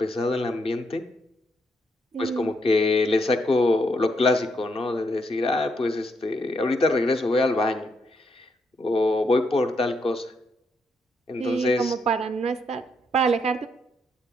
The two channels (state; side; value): normal; both; correlation 0.77